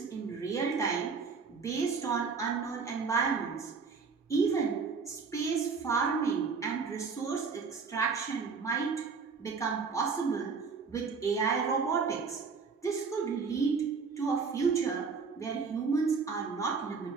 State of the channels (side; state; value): left; quieter; 5.2 dB